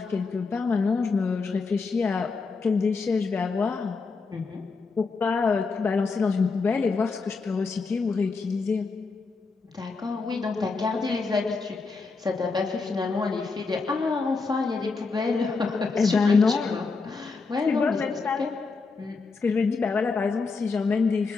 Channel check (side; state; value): right; quieter; 4.4 dB